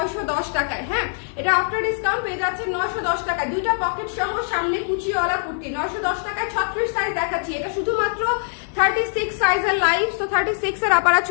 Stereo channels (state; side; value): silent; right; digital silence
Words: টাকায়। হ্যাঁ, এটা আফটার ডিসকাউন্ট পেয়ে যাচ্ছেন 910 টাকা, দুইটা পকেট সহ, সামনে কুচিওয়ালা কুর্তি 910 টাকায়। 36 সাইজ দেখাচ্ছি, এটা শুধুমাত্র 36 সাইজের লাইভ। তো 36 এর আপারা